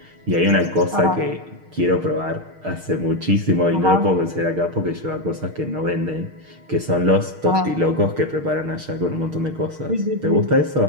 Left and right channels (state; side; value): late; left; 6.5 ms